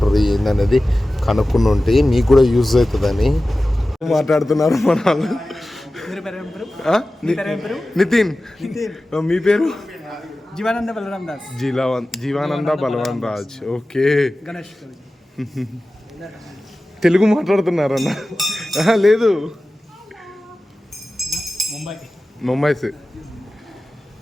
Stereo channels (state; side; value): normal; both; correlation 0.96